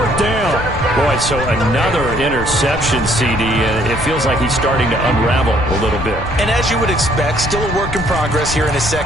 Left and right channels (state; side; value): noise; left; rumble, 8 dB below the sound